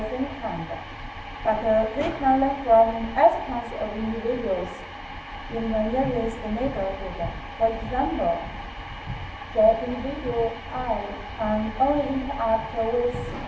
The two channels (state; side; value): identical; both; correlation 1.00